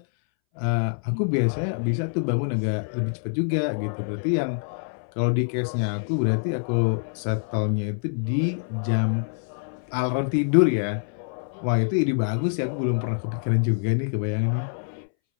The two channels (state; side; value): silent; right; 62 dB below the other